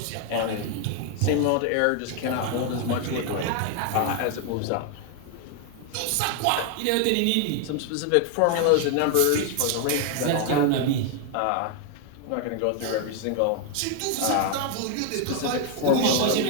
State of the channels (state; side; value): different; both; correlation 0.00